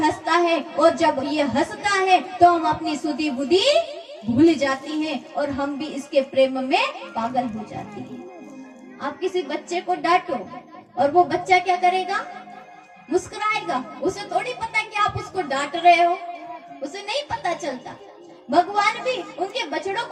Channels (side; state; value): both; identical; correlation 1.00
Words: है और जब ये हंसता है तो हम अपनी सुधी बुद्धि भूल जाती हैं और हम भी इसके प्रेम में पागल हो जाती हैं। आप किसी बच्चे को डांटो और वो बच्चा क्या करेगा? मुस्कुराएगा। उसे थोड़ी पता कि आप उसको डांट रहे हो, उसे नहीं पता चलता। भगवान भी उनके बछड़ों